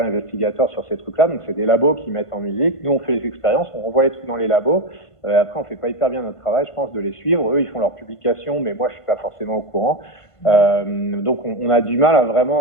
investigateur sur ces trucs-là. Donc c'est des labos qui mettent en musique. Nous, on fait les expériences, on renvoie les trucs dans les labos. Après, on fait pas hyper bien notre travail, je pense, de les suivre. Eux, ils font leurs publications, mais moi, je suis pas forcément au courant. Donc on a du mal à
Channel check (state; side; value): late; right; 1.5 ms